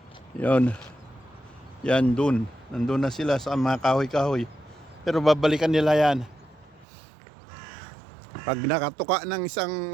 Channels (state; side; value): drops out; left; at 6.9 s